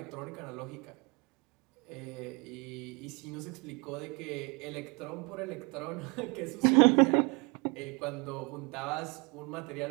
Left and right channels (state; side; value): quieter; left; 30.1 dB